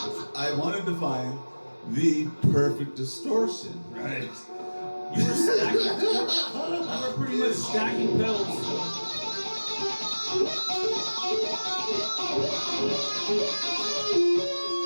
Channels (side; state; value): both; inverted; correlation -1.00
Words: I wanted to find the perfect distortion. Right. You were stacking. You were pretty much stacking pedals.